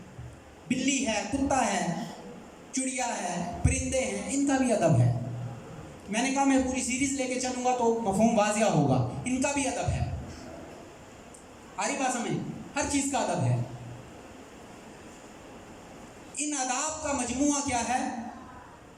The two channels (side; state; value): both; identical; correlation 1.00